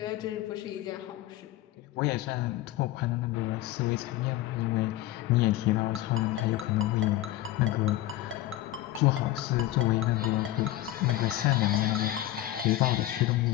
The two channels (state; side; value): quieter; right; 14.9 dB